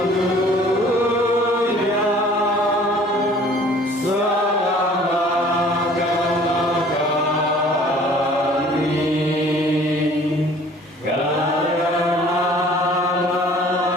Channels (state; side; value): normal; both; correlation 0.52